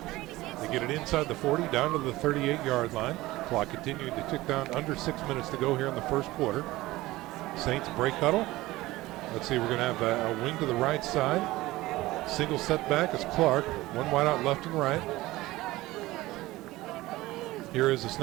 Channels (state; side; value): quieter; left; 18.4 dB